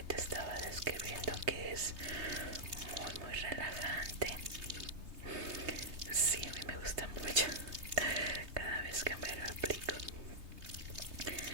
te estaba describiendo, que es muy relajante. Sí, a mí me gusta mucho cada vez que me lo aplico.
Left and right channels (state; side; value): late; left; 3.2 ms